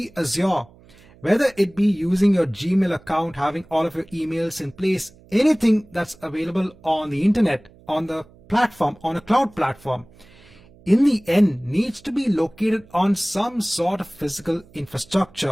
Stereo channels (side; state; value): right; noise; hum, 26 dB below the sound